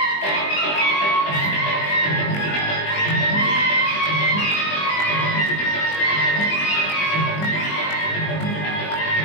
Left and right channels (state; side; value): late; right; 20 ms